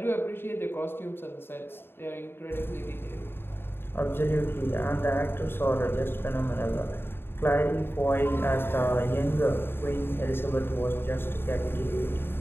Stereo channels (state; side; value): late; right; 0.11 ms